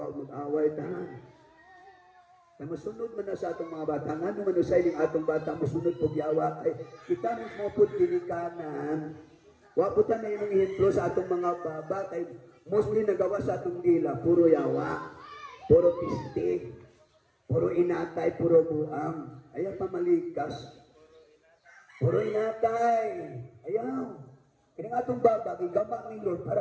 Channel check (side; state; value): both; identical; correlation 1.00